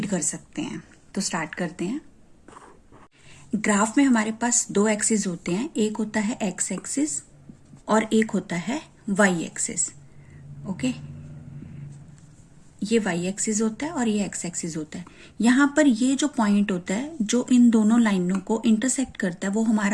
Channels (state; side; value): identical; both; correlation 1.00